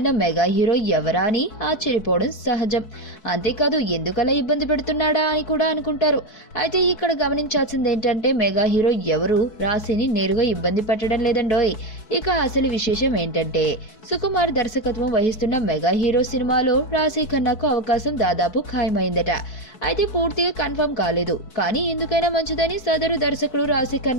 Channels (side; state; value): right; late; 4.6 ms